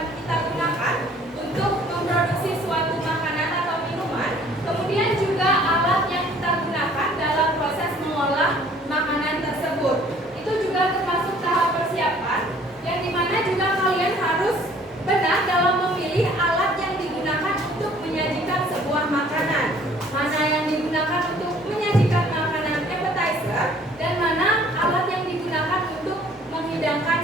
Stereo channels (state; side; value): normal; both; correlation 0.56